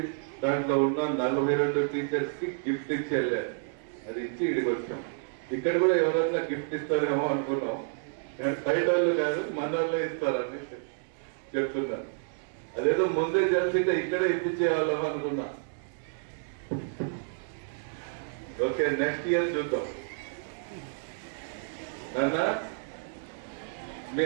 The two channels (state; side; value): silent; left; digital silence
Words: దాంట్లో ఉన్న 42 టీచర్స్ కి గిఫ్ట్ ఇచ్చి వెళ్ళారు. అది ఇచ్చి ఇడికి వచ్చాం. ఇక్కడ కూడా ఎవరైనా గిఫ్ట్ ఇస్తారేమో అనుకున్నాం. బయట వాళ్ళు కాదు, మన వాళ్ళే ఇస్తారని చెప్తున్నారు. అదేదో ముందే తెలిసింటే ఇక్కడే ఇప్పించేవాళ్ళం అనుకున్నా. ఓకే, నెక్స్ట్ ఇయర్ చూద్దాం. నాన్న, మీ